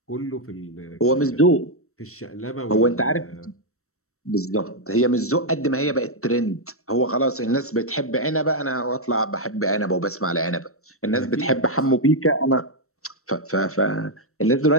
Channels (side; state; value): right; late; 0.63 ms